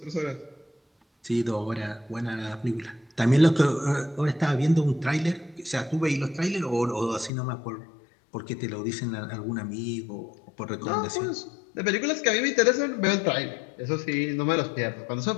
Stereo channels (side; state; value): right; drops out; at 7.3 s